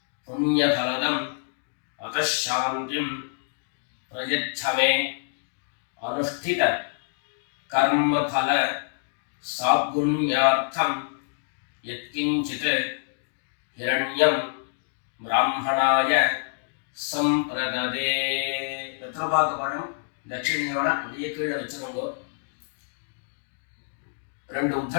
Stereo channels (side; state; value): right; silent; digital silence